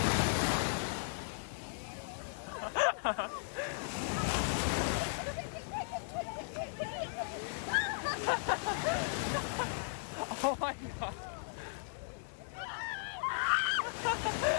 Oh my god.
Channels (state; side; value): silent; right; digital silence